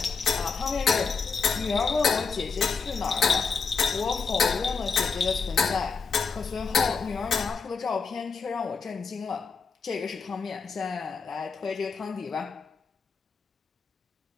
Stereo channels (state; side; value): quieter; right; 5.2 dB